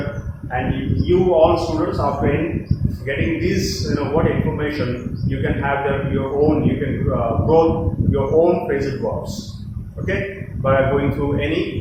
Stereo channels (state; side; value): identical; both; correlation 1.00